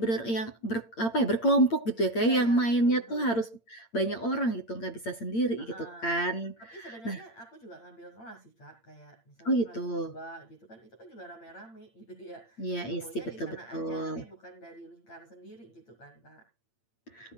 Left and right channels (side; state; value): right; late; 8.8 ms